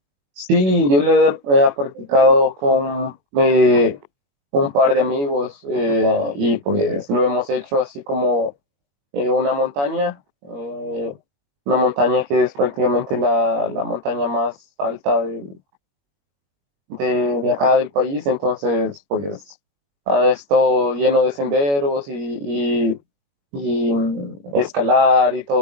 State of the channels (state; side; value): late; left; 21 ms